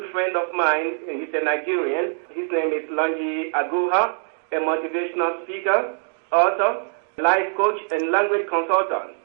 friend of mine. He's a Nigerian. His name is Lonji Adehye, a motivational speaker, author, life coach, and language consultant.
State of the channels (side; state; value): left; silent; 63 dB below the other